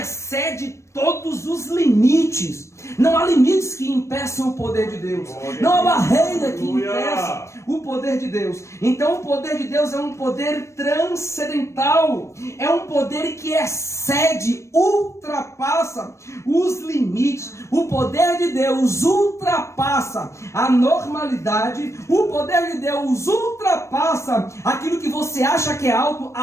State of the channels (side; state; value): right; late; 0.14 ms